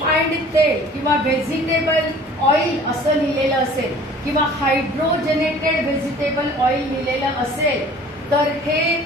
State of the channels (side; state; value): both; normal; correlation 0.49